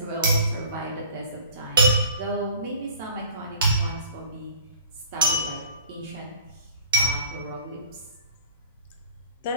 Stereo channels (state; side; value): inverted; both; correlation -0.49